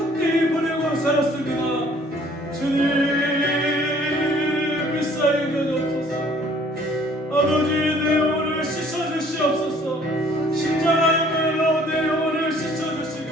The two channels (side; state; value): both; normal; correlation 0.57